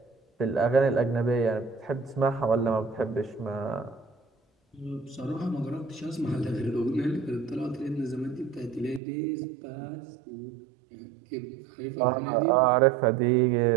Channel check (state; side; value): drops out; left; at 9.0 s